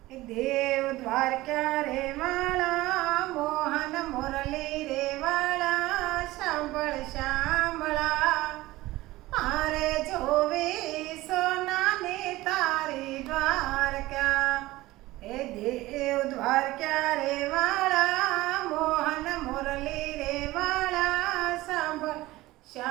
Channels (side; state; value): left; quieter; 18.2 dB